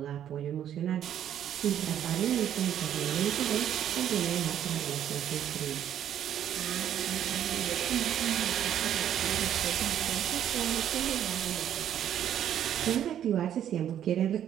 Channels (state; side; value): quieter; left; 10.3 dB